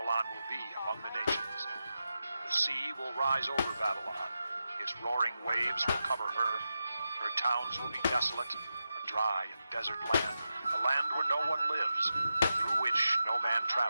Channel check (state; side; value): inverted; both; correlation -0.90